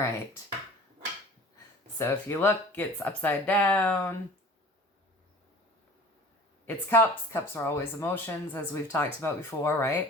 So if you look, it's upside down. It's Cups. Cups are always emotions, as we've talked about before,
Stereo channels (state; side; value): normal; both; correlation 0.43